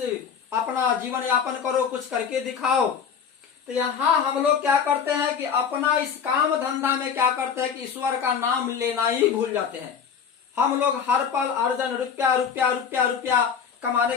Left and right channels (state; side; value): quieter; right; 6.9 dB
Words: अपना जीवन यापन करो, कुछ करके दिखाओ। तो यहाँ हम लोग क्या करते हैं कि अपना इस काम धंधा में क्या करते हैं कि ईश्वर का नाम लेना ही भूल जाते हैं। हम लोग हर पल अर्जन, रुपया रुपया रुपया रुपया कमाने